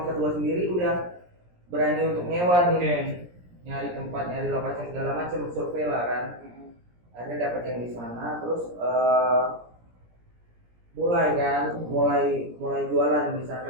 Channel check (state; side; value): late; left; 17 ms